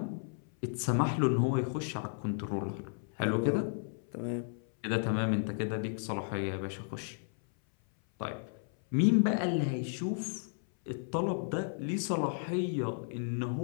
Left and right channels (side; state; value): right; silent; 55 dB below the other